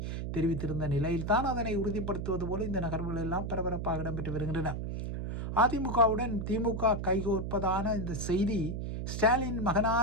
தெரிவித்திருந்த நிலையில்தான் அதனை உறுதிப்படுத்துவது போல இந்த நகர்வுகள் எல்லாம் பரபரப்பாக இடம்பெற்று வருகின்றன. அதிமுகவுடன் திமுக கைகோர்ப்பதான இந்த செய்தி ஸ்டாலின்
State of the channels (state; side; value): noise; right; hum, 4 dB below the sound